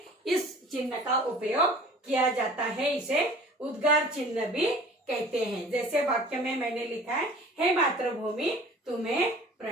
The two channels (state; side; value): normal; both; correlation 0.46